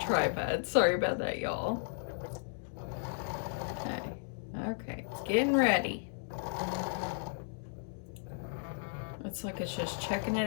Sorry about that, y'all. Okay, it's getting ready. It's like it's just checking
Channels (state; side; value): silent; right; digital silence